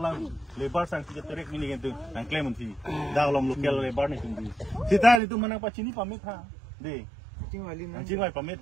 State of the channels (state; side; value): drops out; left; at 5.2 s